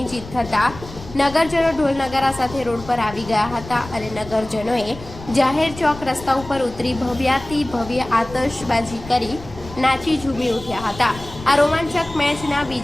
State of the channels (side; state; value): left; noise; rumble, 15 dB below the sound